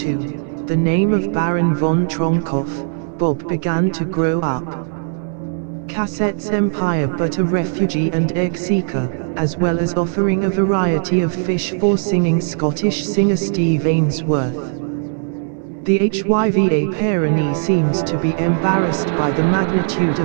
the name of Baron von Tronkoff, Bob, began to grow up. Cassette's empire, but a refugee and egg seeker, as well as offering a variety of fish for singing Scottish singer Steve Ainsworth. The HYVA Pyrenees seems to be embarrassed by the magnitude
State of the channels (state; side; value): silent; left; digital silence